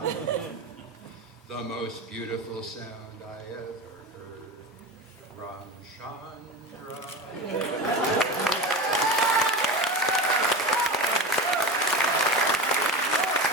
the most beautiful sound I ever heard. Ramchandra.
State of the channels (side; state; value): both; normal; correlation 0.25